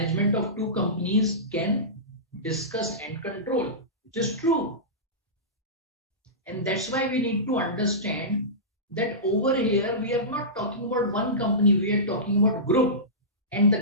of two companies can discuss and control, which is true. And that's why we need to understand that over here we are not talking about one company, we are talking about group, and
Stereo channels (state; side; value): normal; both; correlation -0.19